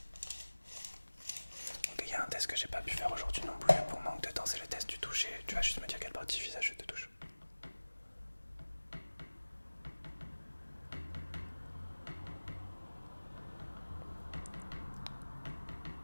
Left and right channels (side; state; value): both; inverted; correlation -1.00